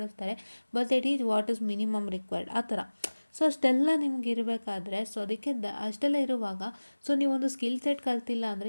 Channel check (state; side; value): inverted; both; correlation -1.00